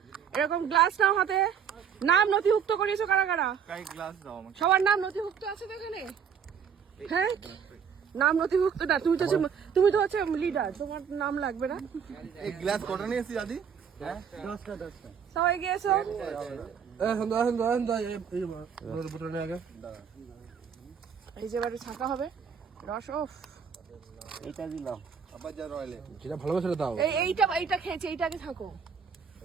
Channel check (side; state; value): left; quieter; 7.3 dB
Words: এরকম গ্লাস নাও হাতে। নাম নথিভুক্ত করিয়েছো কারা কারা? সবার নাম নথিভুক্ত আছে তো এখানে? হ্যাঁ, নাম নথিভুক্ত না। তুমি তো হচ্ছে লিডার, তোমার নাম লাগবে না। এই গ্লাস কটা নিয়েছি দাদি? সবাই গিয়েছো? এই যে বাড়ি ছাকা হবে রস। ওফ, এটা দিলাম আবার যা রয়্যালে যেটা ভালো করে দাও। এইটা খেয়েছি, এইটাকে থাকো,